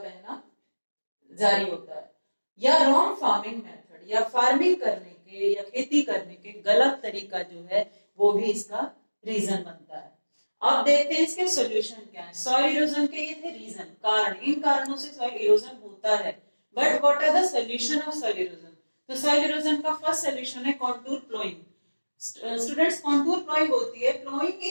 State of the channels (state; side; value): inverted; both; correlation -1.00